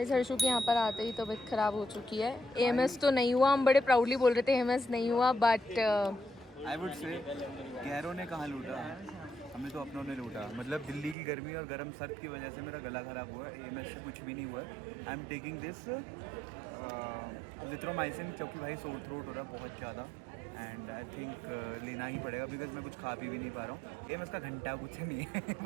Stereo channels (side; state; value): left; drops out; at 11.2 s